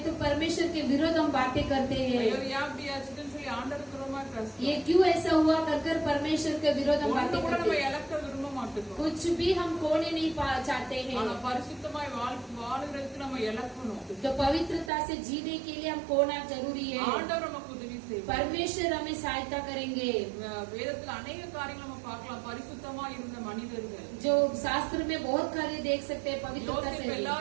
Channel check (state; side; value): drops out; left; at 14.9 s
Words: तो परमेश्वर के विरोध हम बातें करते हैं। ஐயோ ஏன் அப்படி ஆச்சுன்னு சொல்லி ஆண்டவர் புறமாய் பேசுறோம். ये क्यों ऐसा हुआ कर परमेश्वर के विरोध हम ஒண்ணு बातें கூட करते நம்ம हैं। இழக்க விரும்ப மாட்டோம். कुछ भी हम खोने नहीं चाहते ஆனா हैं। பரிசுத்தமாய் வாழுறதுக்கு நம்ம இழக்கணும். तो पवित्रता से जीने के लिए हम खोना जरूरी है। ஆண்டவர் நமக்கு உதவி செய்வார். परमेश्वर हमें सहायता करेंगे। வேதத்துல अनेक காரியங்களை நம்ம பார்க்கலாம். பரிசுத்தமா இருந்த மனிதர்கள். जो शास्त्र में बहुत कार्य देख सकते हैं पवित्रता யோசேப்பு से।